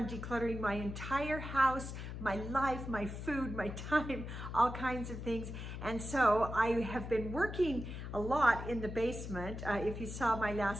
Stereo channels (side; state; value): left; noise; hum, 7 dB below the sound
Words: decluttering my entire house, my life, my food, my time, all kinds of things. And so I have been working a lot in the basement. If you saw my